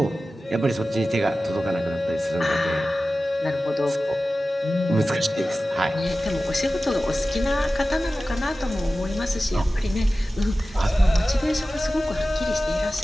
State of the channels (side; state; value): both; normal; correlation 0.95